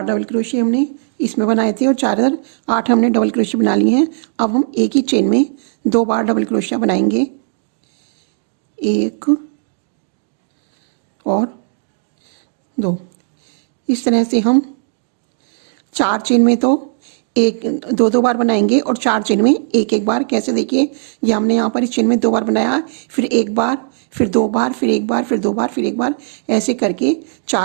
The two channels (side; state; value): left; silent; digital silence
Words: डबल क्रोशिया हमने इसमें बनाए थे और 8 हमने डबल क्रोशिया बना लिए हैं। अब हम एक ही चेन में 2 बार डबल क्रोशिया बनाएंगे, 1 और 2। इस तरह से हम 4 चेन में तो 2 बार बनाएंगे और 4 चेन में 1 बार। कैसे, देखिए ये हमने यहाँ पर इस चेन में 2 बार बनाया, फिर 1 बार, फिर 2 बार, फिर 1 बार, फिर 2 बार, फिर 1 बार, ऐसे करके